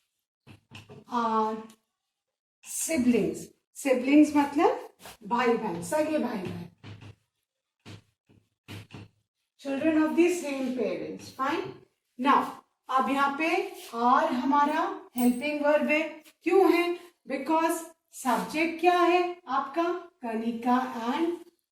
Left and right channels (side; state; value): both; identical; correlation 1.00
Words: are siblings. Siblings मतलब भाई बहन, सगे भाई बहन. Children of the same parents. Fine. Now अब यहाँ पे आर हमारा हेल्पिंग वर्ब है. क्यों है? बिकॉज सब्जेक्ट क्या है आपका? कनिका एंड